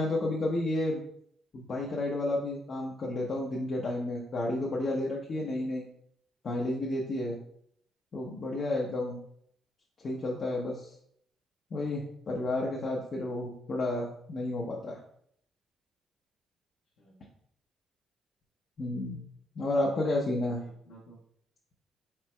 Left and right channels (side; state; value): both; normal; correlation 0.77